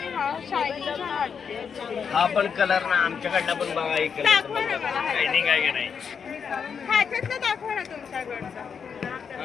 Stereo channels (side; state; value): right; quieter; 6.6 dB